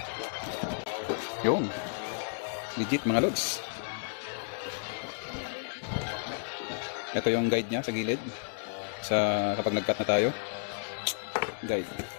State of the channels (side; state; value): right; silent; digital silence